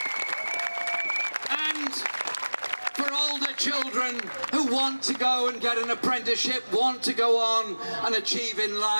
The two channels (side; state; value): both; inverted; correlation -1.00